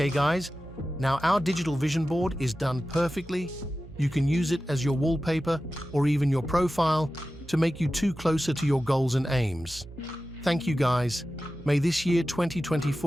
guys, now our digital vision board is done perfectly. You can use it as your wallpaper or even your profile to make you closer to your goals and aims. Thank you guys. May this year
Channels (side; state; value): right; noise; hum, 17 dB below the sound